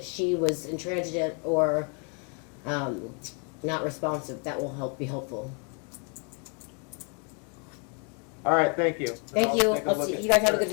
she was intransigent or not responsive, that will be helpful. All right, thank you. Thank you. I'll see you guys. Have a good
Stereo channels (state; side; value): quieter; right; 38.2 dB